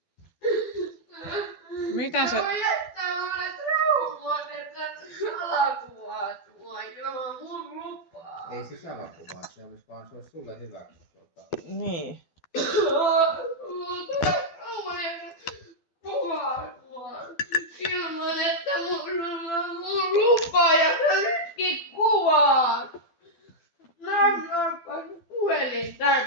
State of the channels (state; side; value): late; right; 12 ms